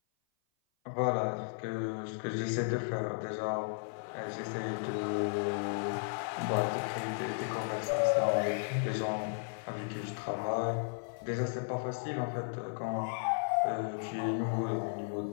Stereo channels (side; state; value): right; silent; 55 dB below the other